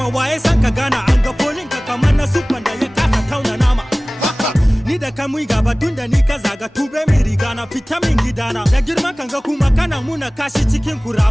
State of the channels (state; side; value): normal; both; correlation 0.98